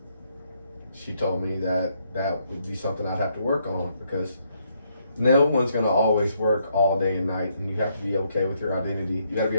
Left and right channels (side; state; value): both; inverted; correlation -0.74